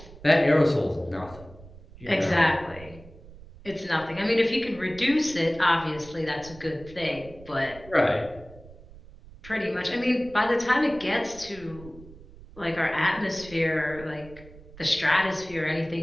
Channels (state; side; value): noise; right; rumble, 19 dB below the sound